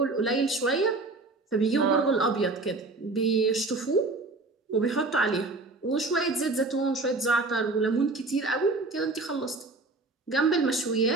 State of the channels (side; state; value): left; quieter; 3.4 dB